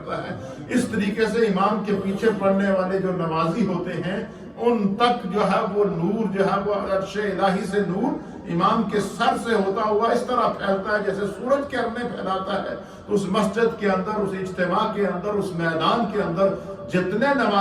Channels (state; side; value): identical; both; correlation 1.00